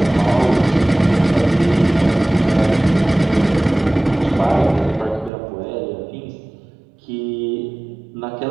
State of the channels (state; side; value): drops out; left; at 5.3 s